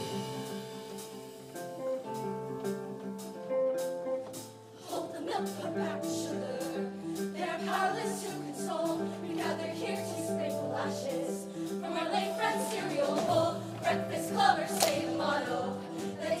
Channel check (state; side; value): identical; both; correlation 1.00